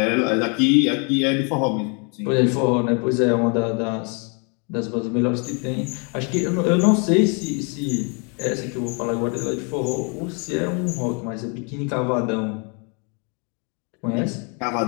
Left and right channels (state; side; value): quieter; right; 35.8 dB